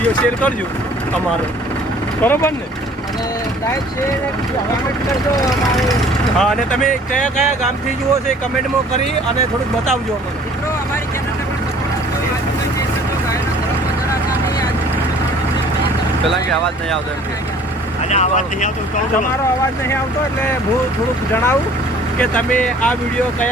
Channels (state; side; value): normal; both; correlation 0.52